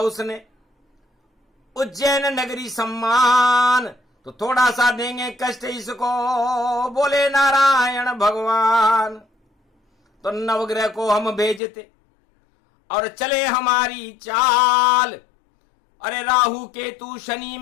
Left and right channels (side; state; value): right; drops out; at 11.6 s